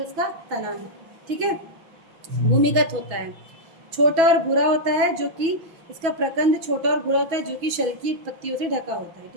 उसका तना है। ठीक है, भूमिगत होता है। छोटा और भूरा होता है, जो कि इसका प्रकंद छोटा और भूरा होता है, जो कि शल की पत्तियों से ढका होता है।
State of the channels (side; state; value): left; late; 6.2 ms